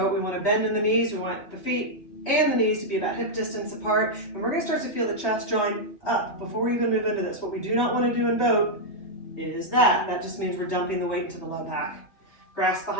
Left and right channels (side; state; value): right; late; 3.3 ms